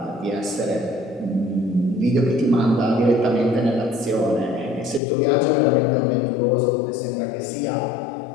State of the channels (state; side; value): drops out; right; at 5.0 s